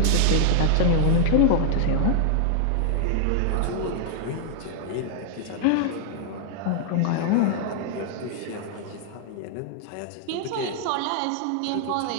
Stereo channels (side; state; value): both; different; correlation 0.00